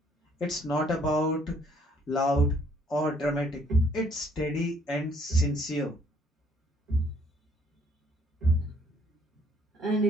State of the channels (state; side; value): normal; both; correlation 0.63